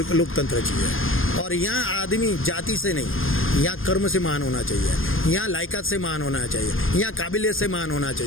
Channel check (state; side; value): late; right; 0.59 ms